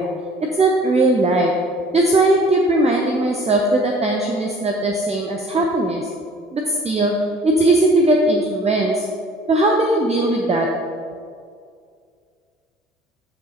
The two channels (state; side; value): normal; both; correlation 0.52